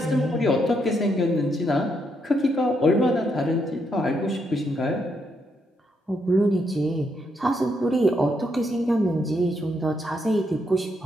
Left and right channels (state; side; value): normal; both; correlation 0.78